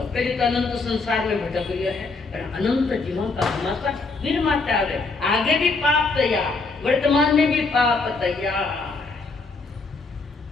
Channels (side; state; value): right; quieter; 3.9 dB